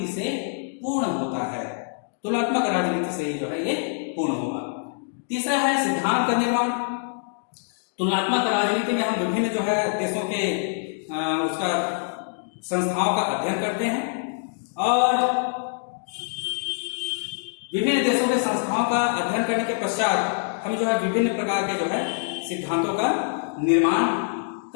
से पूर्ण होता है। तुलनात्मक राजनीति से ही जो है ये पूर्ण होगा। तीसरा है सिद्धांत का निर्माण। तुलनात्मक राजनीति में हम विभिन्न जो है देशों के उसका संस्थाओं का अध्ययन करते हैं और विभिन्न देशों के संस्थाओं का अध्ययन करने के पश्चात हम जो है विभिन्न प्रकार के जो है सिद्धांतों का निर्माण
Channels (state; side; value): silent; right; digital silence